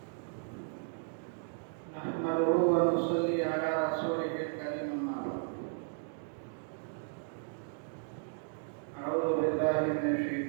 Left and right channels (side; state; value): left; silent; 55 dB below the other